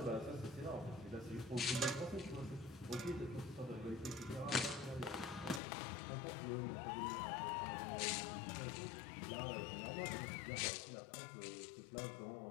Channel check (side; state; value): right; drops out; at 5.6 s